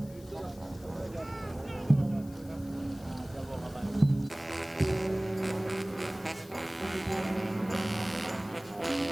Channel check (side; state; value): left; noise; hiss, 23 dB below the sound